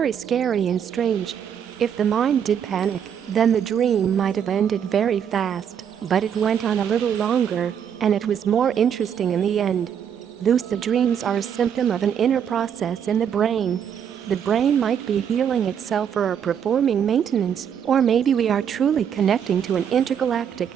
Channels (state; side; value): quieter; left; 8.3 dB